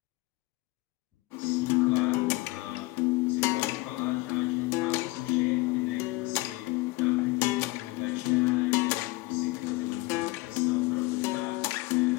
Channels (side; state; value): right; quieter; 21.8 dB